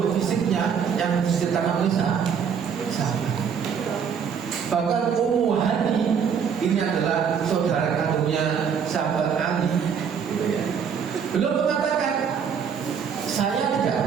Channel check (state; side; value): quieter; left; 7.1 dB